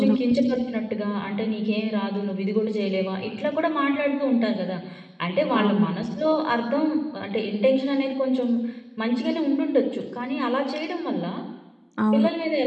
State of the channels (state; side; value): identical; both; correlation 1.00